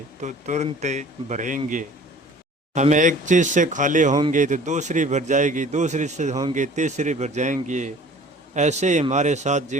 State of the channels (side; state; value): both; normal; correlation 0.47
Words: तो तुरंत भरेंगे। हम एक चीज़ से खाली होंगे तो दूसरी भर जाएगी, दूसरी से होंगे तीसरी भर जाएंगी। ऐसे ही हमारे साथ